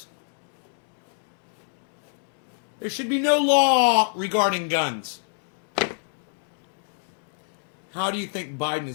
There should be no law regarding guns. How do you think Biden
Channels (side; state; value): right; silent; digital silence